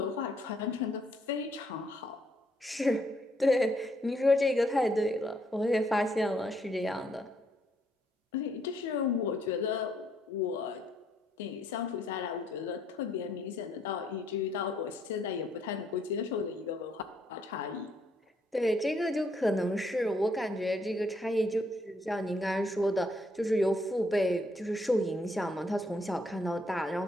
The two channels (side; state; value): both; normal; correlation 0.71